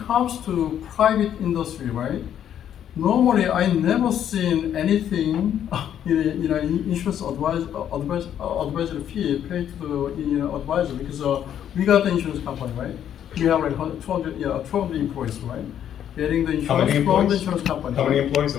comes to private industry, right? normally I never seen anything in insurance advisory fee paid to the advisor because we got the insurance company, right? We have like 200 employees, right? Getting the How many insurance from the employees? insurance company. How many employees,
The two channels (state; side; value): quieter; right; 9.9 dB